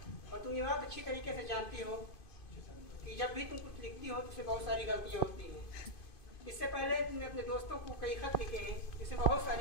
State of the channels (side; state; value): right; late; 2.5 ms